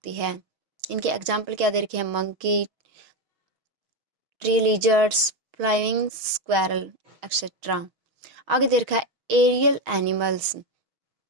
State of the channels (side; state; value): left; late; 6.3 ms